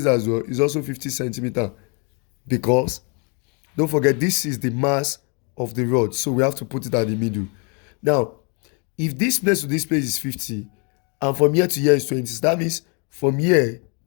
as well is also 50 centimeters, because don't forget this is the mass of the rod, so we have to put it at the middle. Now if this place to this place is 50 and from here to here is 20, so that means from here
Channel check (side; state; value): right; quieter; 35.2 dB